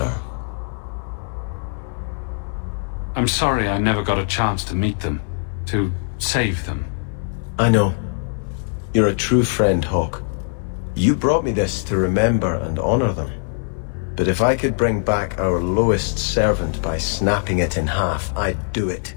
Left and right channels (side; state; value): right; silent; digital silence